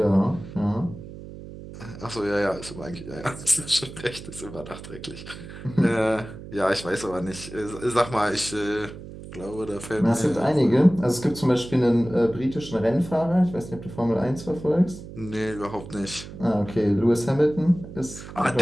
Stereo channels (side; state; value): right; noise; hum, 13 dB below the sound